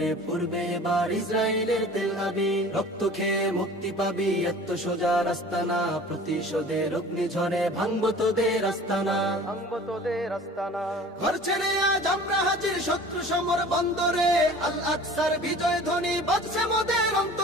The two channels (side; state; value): both; normal; correlation 0.44